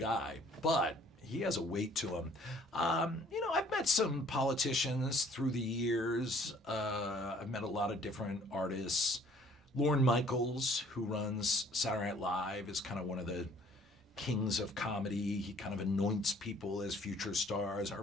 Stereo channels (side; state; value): both; normal; correlation 0.57